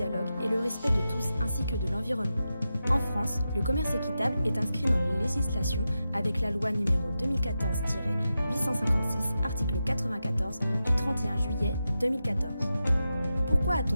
et le respect de tous ainsi que de l'environnement. En France, le commerce équitable est inscrit dans la législation avec la loi numéro 2014-856, article 94 du 31 juillet 2014. Pourquoi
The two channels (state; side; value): inverted; both; correlation -0.90